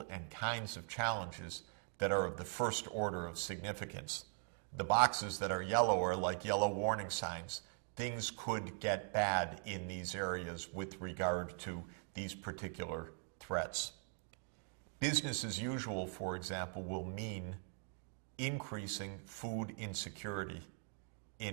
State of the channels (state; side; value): silent; left; 50 dB below the other